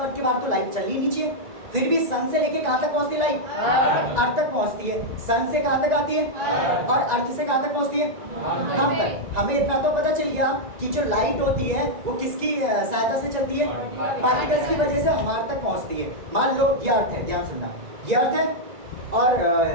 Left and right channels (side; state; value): left; late; 2.0 ms